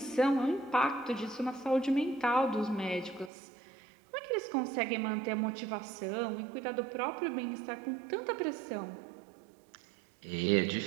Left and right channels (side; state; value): left; drops out; at 3.3 s